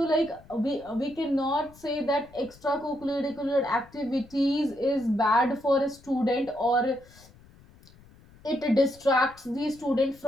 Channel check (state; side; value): noise; left; rumble, 25 dB below the sound